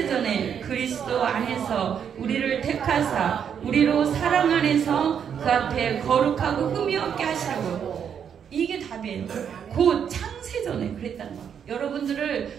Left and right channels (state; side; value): quieter; left; 8.0 dB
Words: 그리스도 안에서 우리를 택하사 우리로 사랑 안에서 그 앞에 거룩하고 흠이 없게 하시려고. 이게 답이에요. 곧 창세전에 그랬다는 거예요.